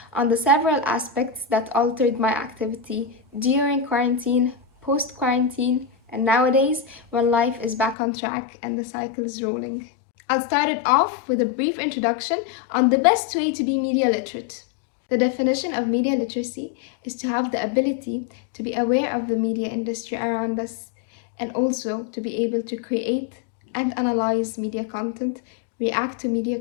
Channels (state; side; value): drops out; right; at 8.0 s